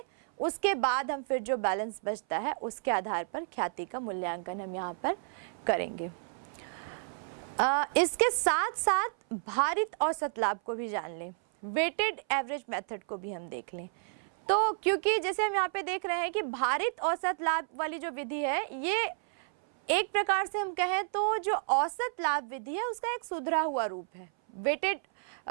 उसके बाद हम फिर जो बैलेंस बचता है उसके आधार पर ख्याति का मूल्यांकन हम यहाँ पर करेंगे। इसके साथ साथ भारित औसत लाभ को भी जान लें, वेटेड एवरेज मेथड को भी हम देख लें। तो क्योंकि जैसे हम यहाँ पे देख रहे हैं कि भारित औसत लाभ वाली जो विधि है, ये एक प्रकार से हम कहें तो जो औसत लाभ विधि है उसका एक सुधरा हुआ रूप है। वेटेड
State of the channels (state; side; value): silent; left; 57 dB below the other